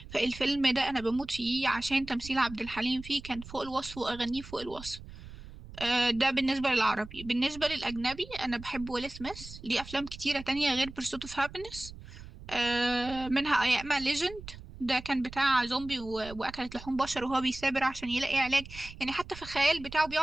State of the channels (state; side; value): noise; right; rumble, 15 dB below the sound